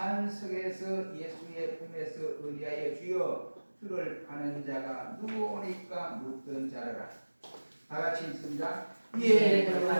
예수의 품에서 의리하여 주여 주를 파는 자가 누구오니까 묻던 자라라. 다같이 읽습니다. 이에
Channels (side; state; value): both; inverted; correlation -1.00